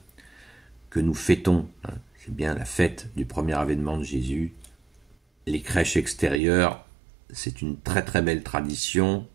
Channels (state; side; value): drops out; left; at 6.4 s